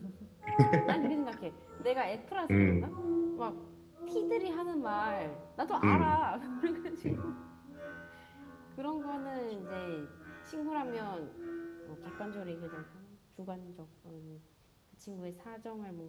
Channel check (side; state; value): both; identical; correlation 1.00